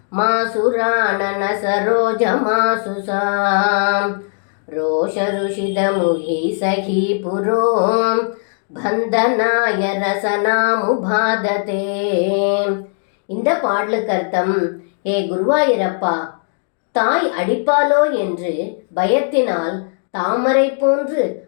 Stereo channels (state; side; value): silent; right; digital silence